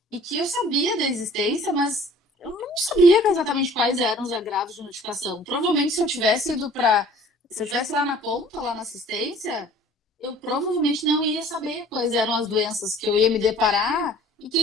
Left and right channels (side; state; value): both; normal; correlation 0.51